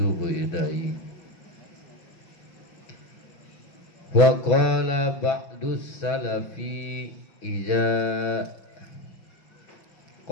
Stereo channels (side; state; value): right; late; 6.1 ms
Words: ilaihi. Wa qala ba'dus salafi idza